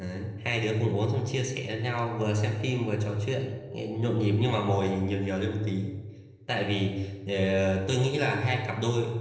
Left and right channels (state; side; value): identical; both; correlation 1.00